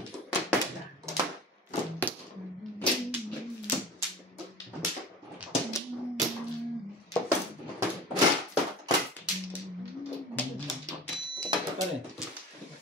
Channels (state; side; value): normal; both; correlation 0.36